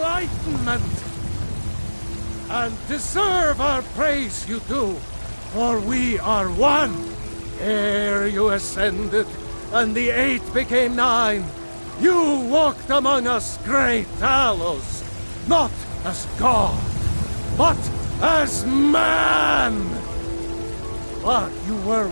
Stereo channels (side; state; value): both; inverted; correlation -1.00